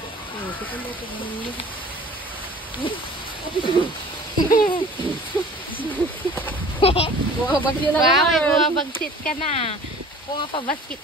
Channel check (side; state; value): both; normal; correlation 0.46